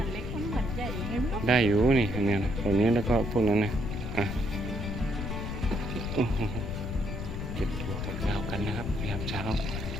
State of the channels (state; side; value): noise; left; rumble, 5 dB below the sound